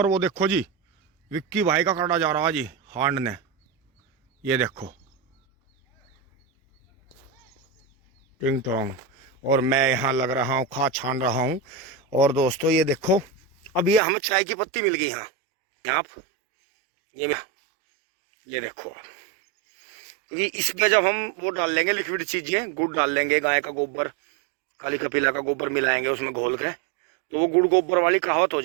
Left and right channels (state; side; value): drops out; left; at 14.0 s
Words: वो देखो जी विक्की भाई का काटा जा रहा है जी हांड ने, ये देखो टिंग टोंग। और मैं यहाँ लग रहा हूँ खाद छान रहा हूँ। और दोस्तों ये देखो अब ये हमें चाय की पत्ती मिल गई यहाँ, आप ये देखो, क्योंकि इसमें जब हम वो डाल लेंगे लिक्विड चीज़ें, गुड़ डाल लेंगे, गाय का गोबर, काली कपीला का गोबर मिलाएंगे उसमें घोल के, तो वो गुड़ गोबर वाली कहावत हो